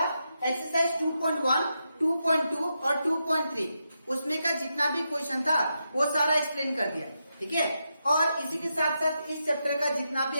एक्सरसाइज 2.1, 2.2 और 2.3 उसमें का जितना भी क्वेश्चन था वो सारा एक्सप्लेन कर दिया, ठीक है। और इसी के साथ साथ इस चैप्टर का जितना भी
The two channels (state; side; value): inverted; both; correlation -0.85